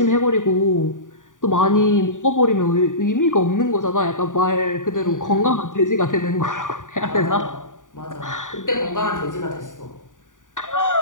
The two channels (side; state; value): right; late; 0.88 ms